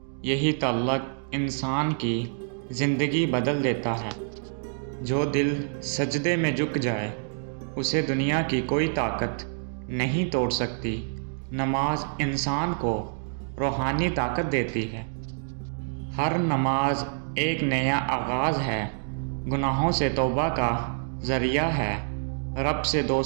یہی تعلق انسان کی زندگی بدل دیتا ہے۔ جو دل سجدے میں جھک جائے اسے دنیا کی کوئی طاقت نہیں توڑ سکتی۔ نماز انسان کو روحانی طاقت دیتی ہے۔ ہر نماز ایک نیا آغاز ہے، گناہوں سے توبہ کا ذریعہ ہے، رب سے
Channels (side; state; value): left; silent; digital silence